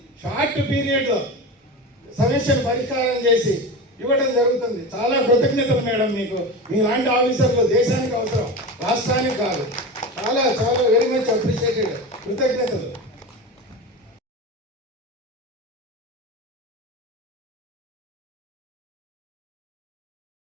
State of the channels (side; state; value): both; normal; correlation 0.26